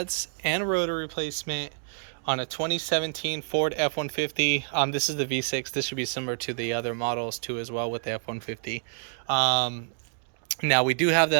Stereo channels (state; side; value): silent; left; digital silence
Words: and rotor replacement on a 2017 Ford F150. This is the V6. This should be similar to the other models too as well with the F150. Now we do have